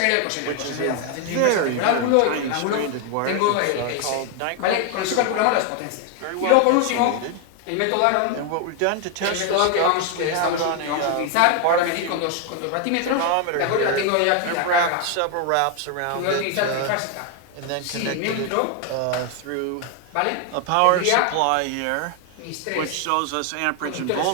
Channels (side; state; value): both; different; correlation 0.01